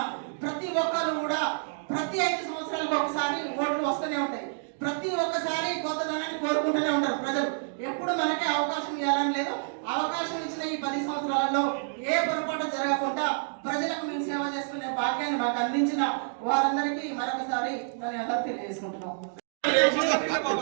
ప్రతి ఒక్కరు కూడా ప్రతి 5 సంవత్సరాలకు ఒకసారి ఓట్లు వస్తూనే ఉంటాయి. ప్రతి ఒక్కసారి కొత్తదనాన్ని కోరుకుంటూనే ఉంటారు ప్రజలు. ఎప్పుడు మనకే అవకాశం ఇవ్వాలని లేదు. అవకాశం ఇచ్చిన ఈ 10 సంవత్సరాలలో ఏ పొరపాటు జరగకుండా ప్రజలకు మేము సేవ చేసుకునే భాగ్యాన్ని మాకు అందించిన వారందరికీ మరొకసారి ధన్యవాదాలు తెలియజేసుకుంటున్నాం.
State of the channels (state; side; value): silent; left; digital silence